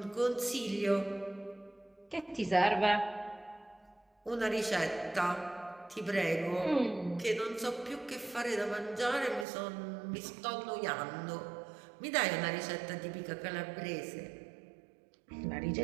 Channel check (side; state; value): left; drops out; at 9.5 s